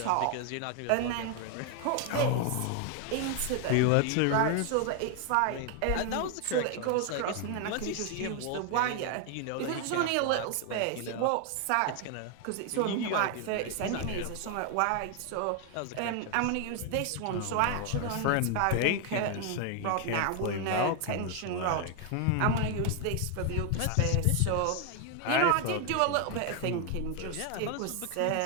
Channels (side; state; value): both; different; correlation 0.01